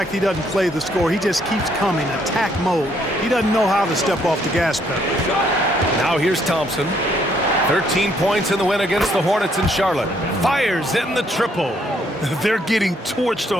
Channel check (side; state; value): both; normal; correlation 0.69